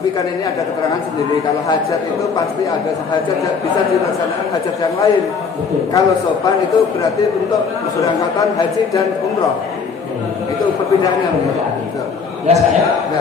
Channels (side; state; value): right; quieter; 5.5 dB